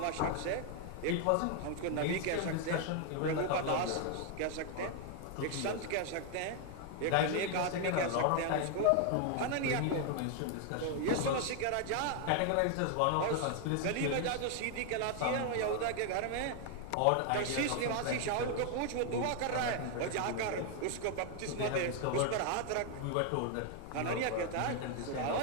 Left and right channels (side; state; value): both; different; correlation 0.01